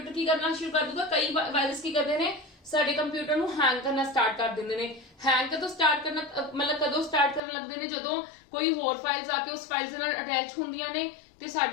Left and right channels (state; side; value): drops out; right; at 7.4 s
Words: ਕੀ ਕਰਨਾ ਸ਼ੁਰੂ ਕਰ ਦੂਗਾ। ਕਈ ਵਾਇਰਸ ਕੀ ਕਰਦੇ ਨੇ, ਸਾਡੇ ਕੰਪਿਊਟਰ ਨੂੰ ਹੈਂਗ ਕਰਨਾ ਸਟਾਰਟ ਕਰ ਦਿੰਦੇ ਨੇ। ਹੈਂਗ ਕਦੋਂ ਸਟਾਰਟ ਕਰਨਾ, मतलब ਕਦੋਂ ਸਟਾਰਟ ਕਰਨ ਲੱਗਦੇ ਨੇ, ਜਦੋਂ ਕੋਈ ਹੋਰ ਫਾਈਲਸ ਆ ਕੇ ਉਸ ਫਾਈਲਸ ਨਾਲ ਅਟੈਚ ਹੁੰਦੀਆਂ ਨੇ ਤੇ